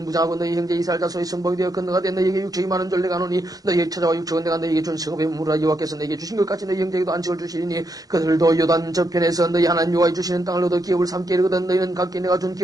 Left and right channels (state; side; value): late; left; 0.18 ms